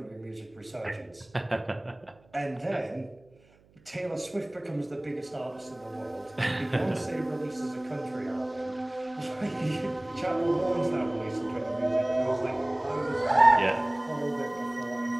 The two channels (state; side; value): noise; right; hum, 30 dB below the sound